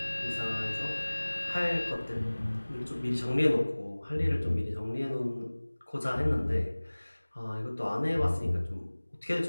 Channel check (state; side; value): inverted; both; correlation -1.00